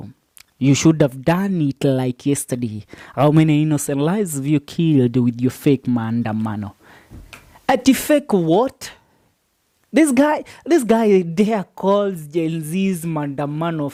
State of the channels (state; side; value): identical; both; correlation 1.00